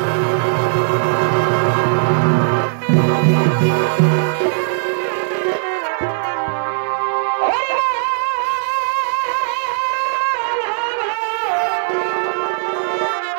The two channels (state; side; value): silent; left; 55 dB below the other